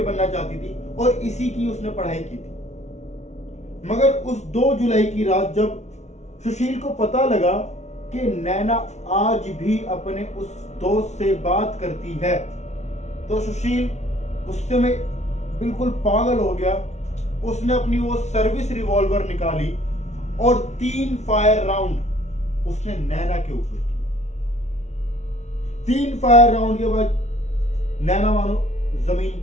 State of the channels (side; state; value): right; late; 0.32 ms